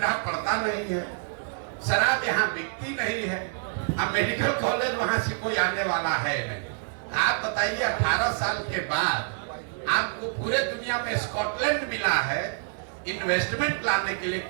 पड़ता नहीं है, शराब यहाँ बिकती नहीं है, अब मेडिकल कॉलेज वहां से कोई आने वाला है नहीं। आप बताइए 18 साल के बाद आपको पूरे दुनिया में स्कॉटलैंड मिला है इन्वेस्टमेंट लाने के लिए।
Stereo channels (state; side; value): silent; left; 60 dB below the other